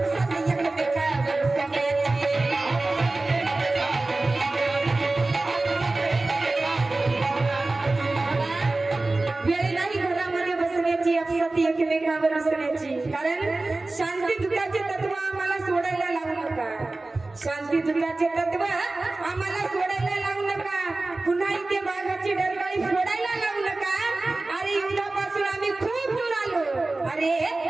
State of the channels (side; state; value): left; quieter; 3.1 dB